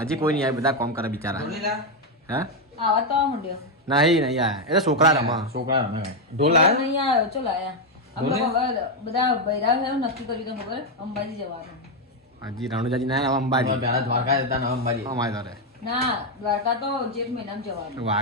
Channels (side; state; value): both; normal; correlation 0.04